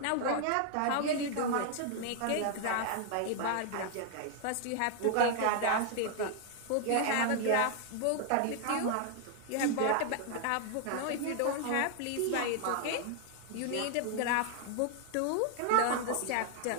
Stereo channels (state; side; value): different; both; correlation 0.00